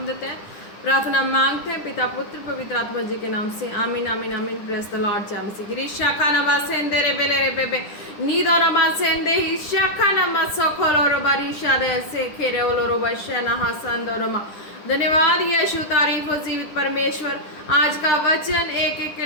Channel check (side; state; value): right; late; 9.9 ms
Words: देते हैं। प्रार्थना मांगते हैं पिता पुत्र पवित्र आत्मा जी के नाम से, आमीन आमीन आमीन। Praise the Lord. जय मसीह की। रिशाखा नमा सेंदे रे बेले रे बेबे नीदो नमा सेंदे हिशाखा नमा सोखोरो रो बारिशा दे से खेरे ओलो रो बशना हसंदो रमा। धन्यवाद यीशु, तारीफ हो जीवित परमेश्वर। आज का वचन एक एक के